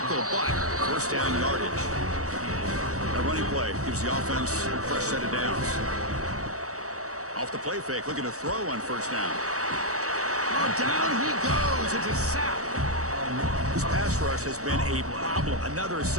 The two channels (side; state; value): left; late; 0.65 ms